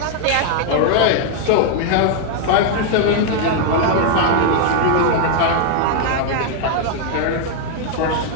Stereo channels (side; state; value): both; different; correlation 0.00